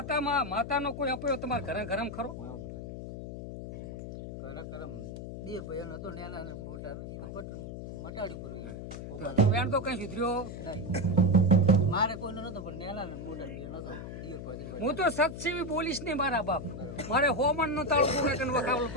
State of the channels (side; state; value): left; noise; hum, 8 dB below the sound